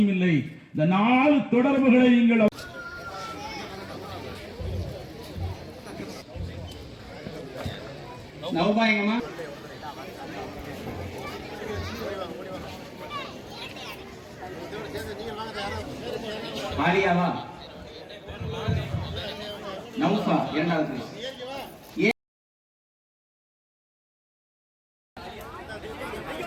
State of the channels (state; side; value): identical; both; correlation 1.00